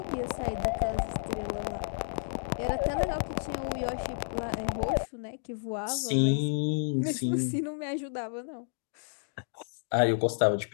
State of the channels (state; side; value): silent; right; digital silence